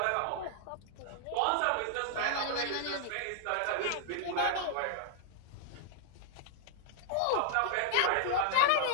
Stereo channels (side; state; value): both; different; correlation -0.01